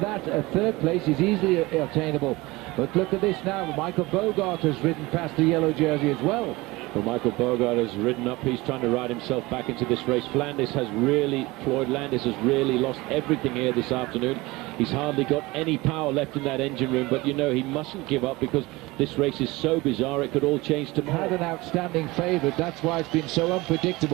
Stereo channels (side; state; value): left; quieter; 21.7 dB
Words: that third place is easily attainable. But look at this now, Michael Bogart has ridden past the yellow jersey as well. Well, Michael Bogart has ridden up. He's trying to ride himself back into this race. Floyd Landis has really lost everything here this afternoon. He's hardly got any power left in that engine room, but you know he mustn't give up because this race is so bizarre it could all change tomorrow. Had an outstanding favourite, that's why it's been so